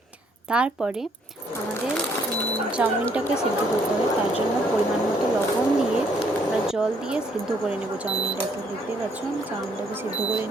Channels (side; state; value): both; normal; correlation 0.68